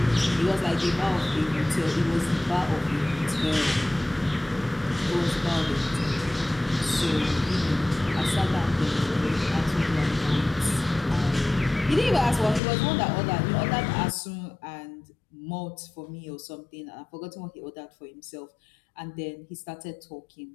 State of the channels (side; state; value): right; drops out; at 12.6 s